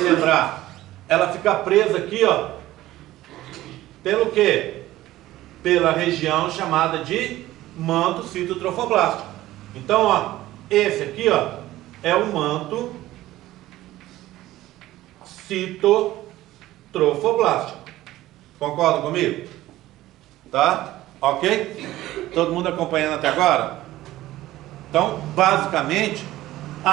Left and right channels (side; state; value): left; quieter; 15.7 dB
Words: lembrar. Ela fica presa aqui, ó. Pelo quê? Pela região chamada de manto citotrofoblástico. Então, ó, esse aqui, ó, é o manto citotrofoblástico. Concorda comigo? Tá? Ok? Todo mundo acompanhando até agora? Então, basicamente,